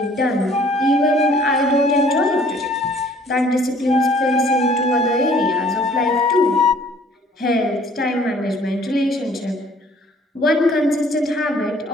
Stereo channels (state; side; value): normal; both; correlation 0.57